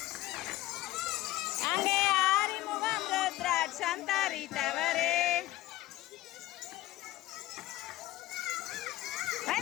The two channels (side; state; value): right; quieter; 16.4 dB